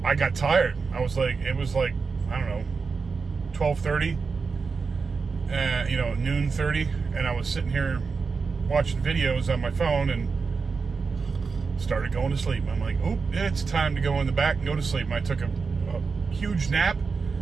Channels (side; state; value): left; quieter; 4.9 dB